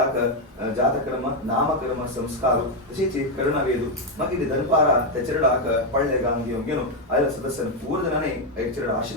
जातक्रम नामक्रम संस्कार तशीच करणवेदू मगिरी धनपारा ते चरडाक पळले गांग घेऊन आयला सदस्य पूर्णने एक चरड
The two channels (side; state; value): both; normal; correlation 0.04